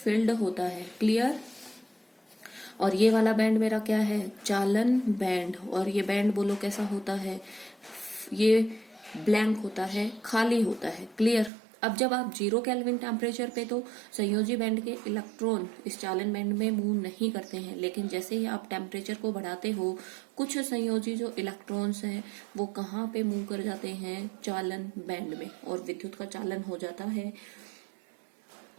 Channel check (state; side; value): drops out; left; at 11.5 s